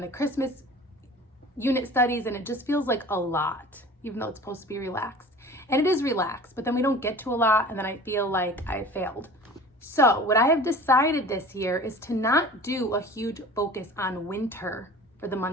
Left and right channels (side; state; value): both; normal; correlation 0.42